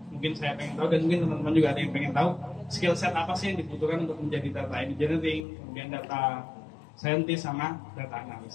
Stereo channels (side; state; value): right; drops out; at 5.5 s